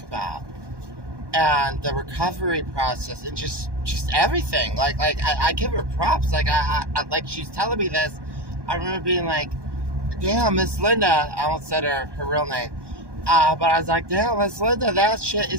about, and the recovery process, and just everything. I give her props. Like she's telling me this, I remember being like, damn, Miss Linda. I almost said her real name. But I was like, damn, Miss Linda, that shit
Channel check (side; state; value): left; late; 1.2 ms